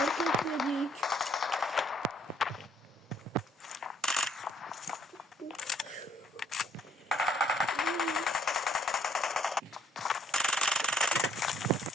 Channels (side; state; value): both; normal; correlation 0.61